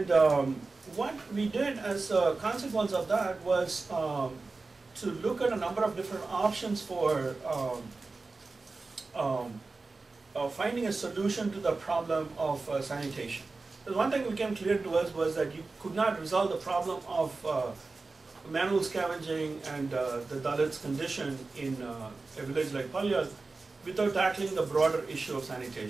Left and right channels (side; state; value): left; quieter; 3.8 dB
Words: what we did as a consequence of that was to look at a number of different options for finding a solution to the problem of sanitation. The one thing became clear to us was that you could not resolve the problem of manual scavenging and the Dalits' condition in a village like Palyad without tackling the broader issue of